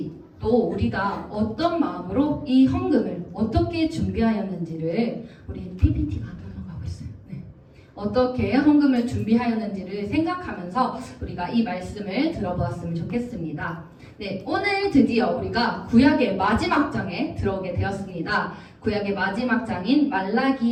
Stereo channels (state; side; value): identical; both; correlation 1.00